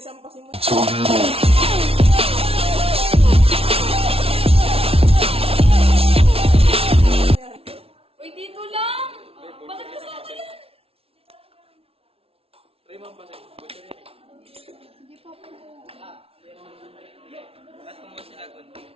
sampasin mo. Uy, dito lang! Bakit kasama yan? Try mo ang pasin. Buti rin eh. Hindi pa po. Lahat mo sila kunti.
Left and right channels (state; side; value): late; left; 0.28 ms